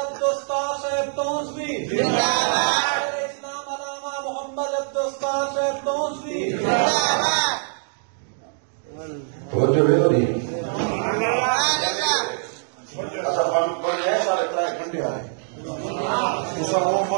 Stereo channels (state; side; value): silent; left; digital silence